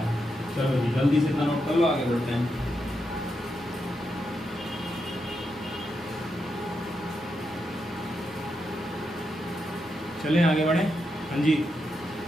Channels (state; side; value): normal; both; correlation 0.84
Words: चलो जी जल्दी से नोट कर लो, आगे बढ़ते हैं। चलें आगे बढ़े। हाँ जी